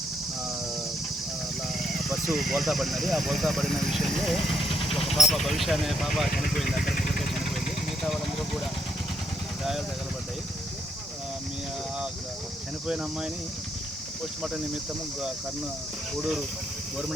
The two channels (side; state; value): both; normal; correlation 0.74